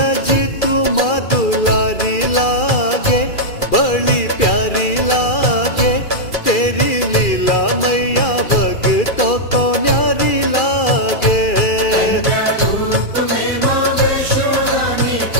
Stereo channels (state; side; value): late; right; 2.3 ms